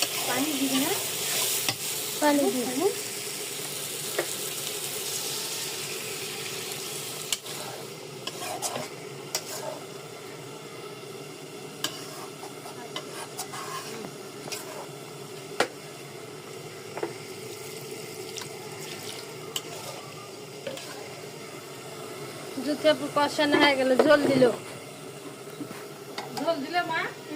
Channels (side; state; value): both; identical; correlation 1.00